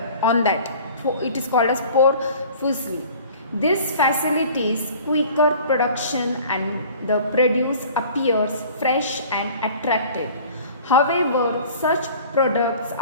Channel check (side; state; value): both; inverted; correlation -0.46